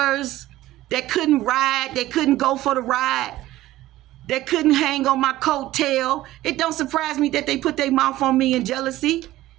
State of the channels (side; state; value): left; quieter; 15.8 dB